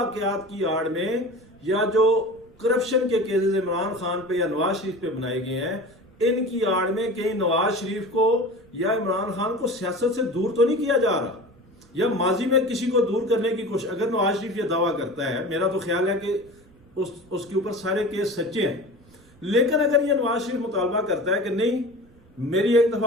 کی آڑ میں یا جو کرپشن کے کیسز عمران خان پہ یا نواز شریف پہ بنائے گئے ہیں، ان کی آڑ میں کہیں نواز شریف کو یا عمران خان کو سیاست سے دور تو نہیں کیا جا رہا، یا ماضی میں کسی کو دور کرنے کی کوشش۔ اگر نواز شریف یہ دعویٰ کرتا ہے، میرا تو خیال ہے کہ اس کے اوپر سارے کیس سچے ہیں، لیکن اگر یہ نواز شریف مطالبہ کرتا ہے کہ نہیں میری ایک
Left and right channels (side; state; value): right; noise; rumble, 28 dB below the sound